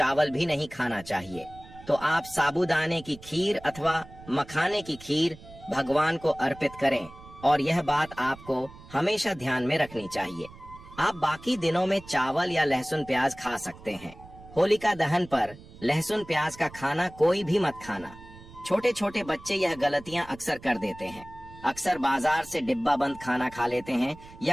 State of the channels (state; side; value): noise; right; rumble, 19 dB below the sound